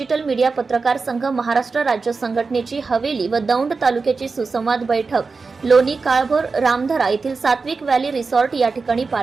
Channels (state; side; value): quieter; left; 4.4 dB